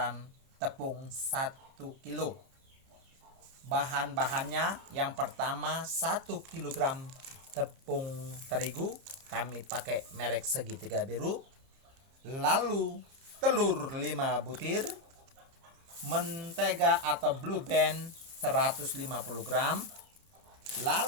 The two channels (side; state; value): left; late; 30 ms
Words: tepung 1 kilo. Bahan-bahannya yang pertama 1 kg tepung terigu, kami pakai merek segitiga biru. Lalu telur 5 butir, mentega atau Blue Band 150 gram.